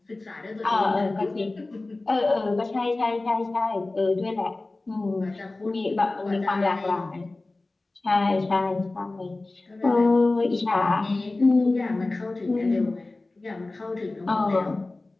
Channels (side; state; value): right; quieter; 3.1 dB